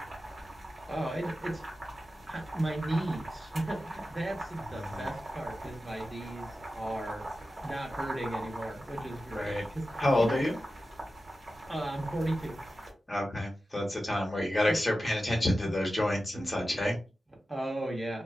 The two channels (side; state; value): both; normal; correlation 0.93